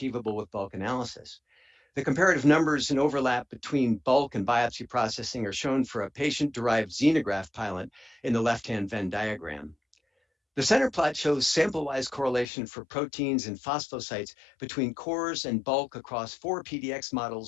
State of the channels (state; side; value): drops out; right; at 12.5 s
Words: with bulk analysis. The comparative numbers and overlap between bulk and biopsy processing are shown for a patient-derived xenograft pilot in the left-hand Venn diagram. The center plot shows sample-wise correlation for proteins and phosphosites between cores and bulk across 4 PDX